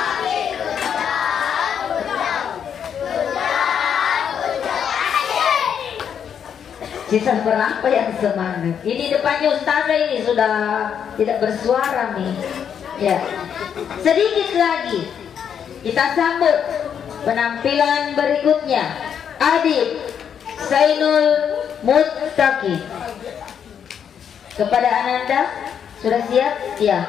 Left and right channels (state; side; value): quieter; right; 8.1 dB